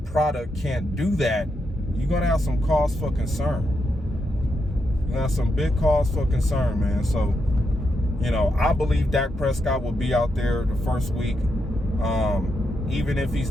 product can't do that. You're gonna have some cause for concern. You're gonna have some big cause for concern, man. So, I believe Dak Prescott will be out there the first week. Even if he's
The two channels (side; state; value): both; normal; correlation 0.83